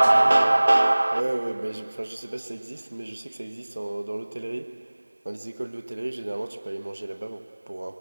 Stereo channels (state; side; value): inverted; both; correlation -1.00